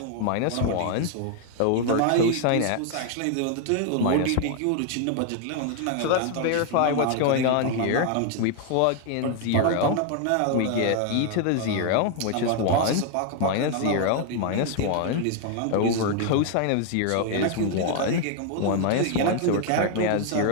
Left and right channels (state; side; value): different; both; correlation 0.00